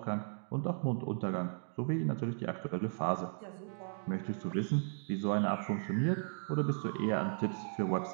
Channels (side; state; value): left; silent; digital silence